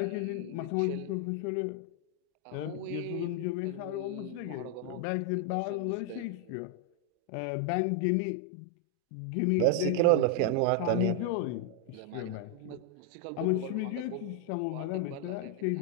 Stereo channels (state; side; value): different; both; correlation 0.00